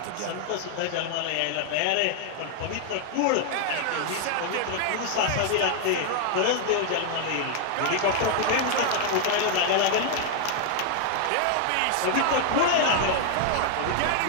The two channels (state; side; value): different; both; correlation 0.00